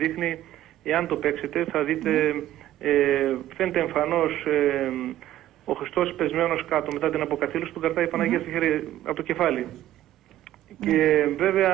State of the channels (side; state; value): left; quieter; 13.4 dB